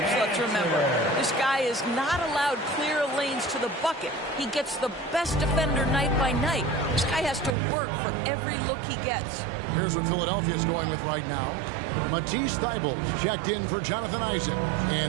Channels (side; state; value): left; drops out; at 7.6 s